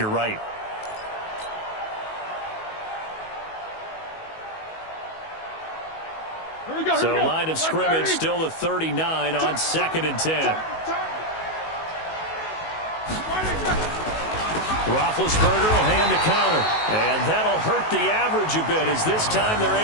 right. So line of scrimmage still the 39 on 2nd and 10. Roethlisberger will hand a counter, and that'll hurt the average a bit as this time they're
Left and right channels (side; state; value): right; late; 19 ms